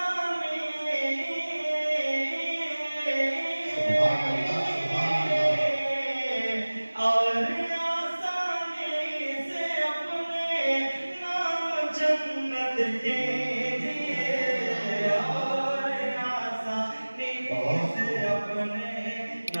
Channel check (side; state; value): both; inverted; correlation -1.00